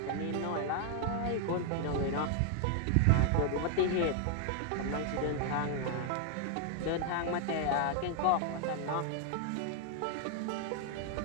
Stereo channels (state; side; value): different; both; correlation 0.00